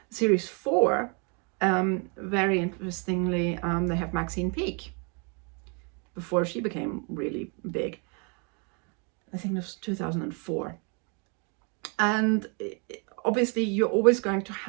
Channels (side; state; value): left; quieter; 36.0 dB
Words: Series 4, very interestingly, they have Maxine Peake, before she became really big. I think it was 2004. And obviously you're always going to